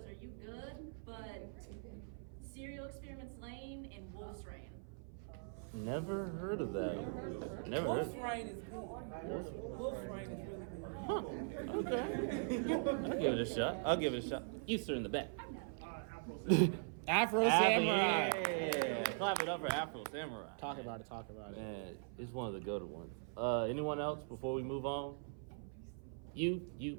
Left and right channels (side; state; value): left; silent; 50 dB below the other